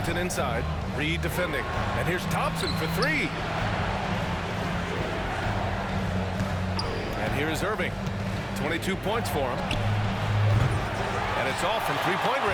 inside. Reed defending. And here's Thompson for 3. And here is Irving. 22 points for him. And it's all from three-point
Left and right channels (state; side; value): identical; both; correlation 1.00